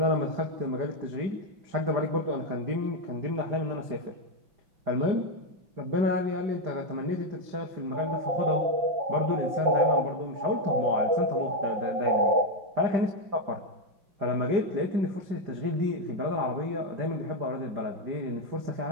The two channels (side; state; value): left; late; 5.1 ms